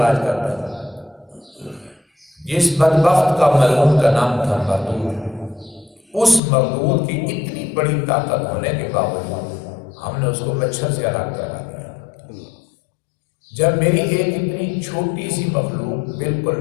کرتا تھا۔ جس بدبخت کا ملعون کا نام تھا مردود، اس مردود کی اتنی بڑی طاقت ہونے کے باوجود ہم نے اس کو مچھر سے الگ کرا دیا۔ جب میری ایک اتنی چھوٹی سی مخلوق،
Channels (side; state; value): right; drops out; at 6.4 s